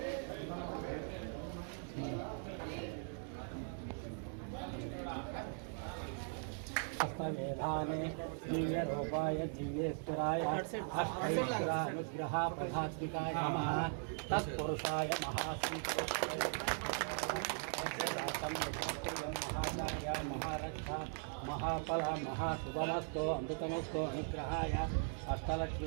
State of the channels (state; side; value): silent; left; 51 dB below the other